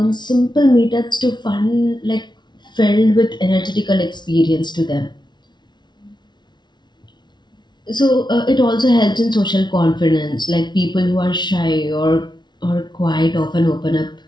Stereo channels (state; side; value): late; right; 0.21 ms